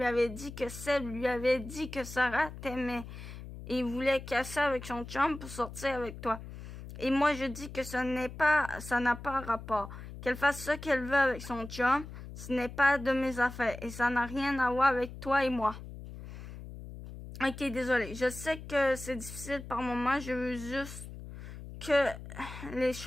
avait dit que Seb lui avait dit que Sarah t'aimait et voulait casser avec son chum pour sortir avec toi. Et moi, je dis que ça n'a pas rapport. Qu'elle fasse ce qu'elle veut avec son chum, ce n'est pas de mes affaires et ça n'a rien à voir avec toi et moi. Ok, désolé. Je sais que c'est difficile par moments. Je veux juste que les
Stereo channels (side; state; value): left; noise; hum, 12 dB below the sound